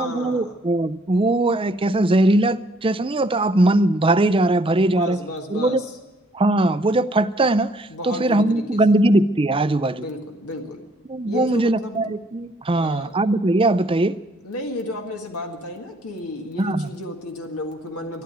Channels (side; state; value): both; normal; correlation 0.64